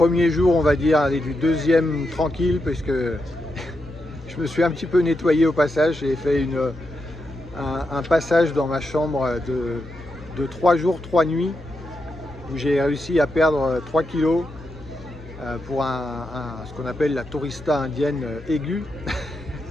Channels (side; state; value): both; normal; correlation 0.85